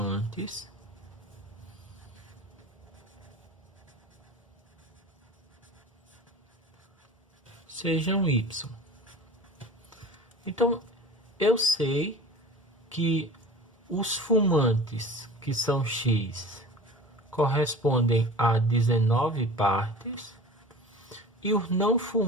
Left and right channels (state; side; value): normal; both; correlation 0.39